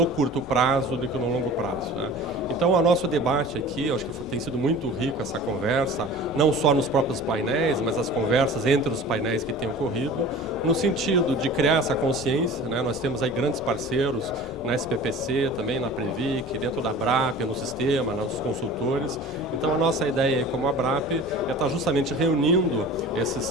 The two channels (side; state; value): both; normal; correlation 0.40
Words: curto prazo do que no longo prazo, né? Então, o nosso debate aqui, acho que tem sido muito rico essa conversa, não só nos próprios painéis, mas as conversas entre os painéis que têm ocorrido, no sentido de criar essa consciência, né? Nós temos aí grandes parceiros na SPPC, também na Previc, dentro da Abrap, no sistema, nos consultores. Então, a nossa ideia como Abrap é estar justamente reunindo